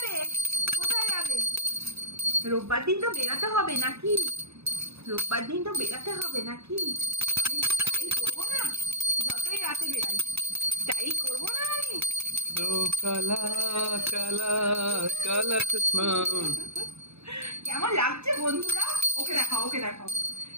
কোথায় যাবে? রোববার দিন তো বেরাতে হবে নাকি? রোববার দিন তো বেরাতে হবে নাকি? আমি স্টাইল করবো না, যতই রাতে বেরাই স্টাইল করবো না আমি। তো কালা কালা কালা চশমা। কেমন লাগছে বন্ধুরা? ওকে দেখাও, ওকে দেখাও,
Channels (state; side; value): late; left; 0.79 ms